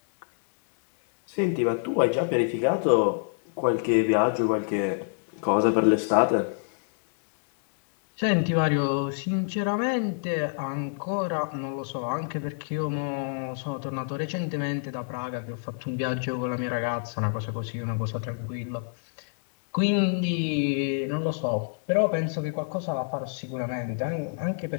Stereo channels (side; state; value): right; silent; 60 dB below the other